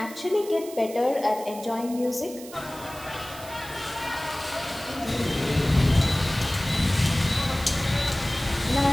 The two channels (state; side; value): noise; right; hiss, 16 dB below the sound